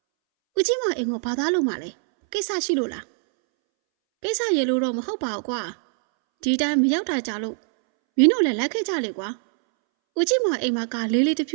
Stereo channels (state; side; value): silent; left; 63 dB below the other